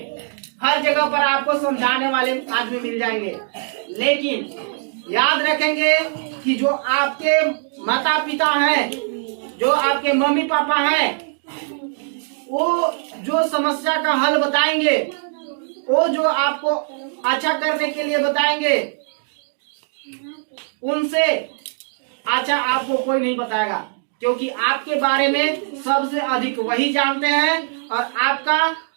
हर जगह पर आपको समझाने वाले आदमी मिल जाएंगे। लेकिन याद रखेंगे कि जो आपके माता पिता हैं, जो आपके मम्मी पापा हैं, वो जो समस्या का हल बताएंगे, वो जो आपको अच्छा करने के लिए बताएंगे, उनसे अच्छा आपको कोई नहीं बताएगा, क्योंकि आपके बारे में सबसे अधिक वही जानते हैं और आपका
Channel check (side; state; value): left; silent; digital silence